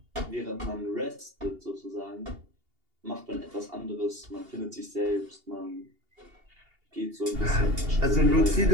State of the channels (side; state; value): left; late; 2.8 ms